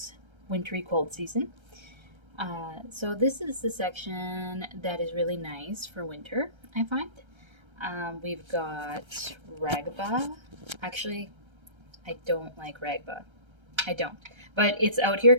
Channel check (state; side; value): late; left; 1.3 ms